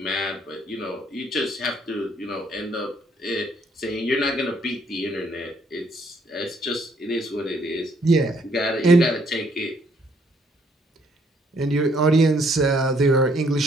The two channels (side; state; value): both; normal; correlation 0.67